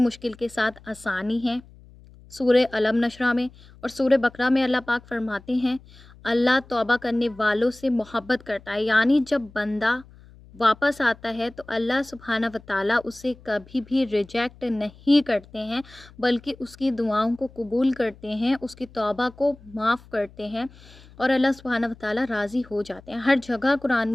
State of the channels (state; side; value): noise; left; hum, 23 dB below the sound